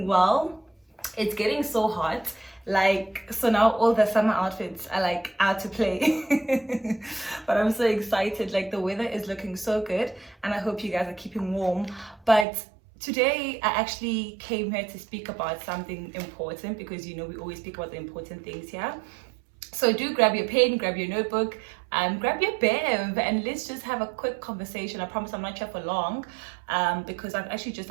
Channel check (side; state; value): left; drops out; at 12.5 s